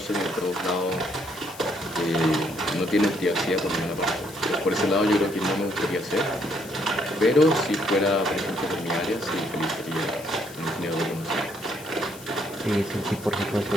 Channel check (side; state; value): left; noise; hiss, 17 dB below the sound